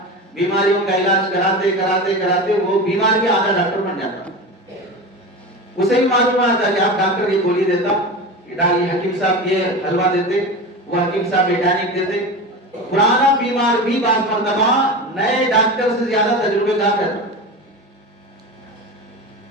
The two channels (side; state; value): both; normal; correlation 0.27